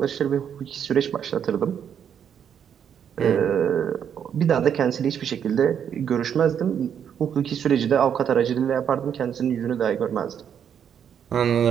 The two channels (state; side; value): quieter; left; 8.4 dB